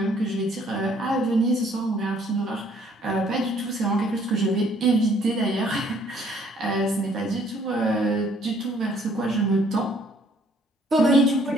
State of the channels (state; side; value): normal; both; correlation 0.62